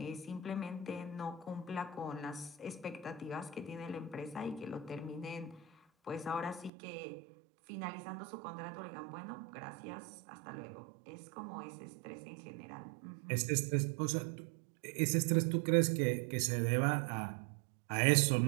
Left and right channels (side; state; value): left; drops out; at 6.7 s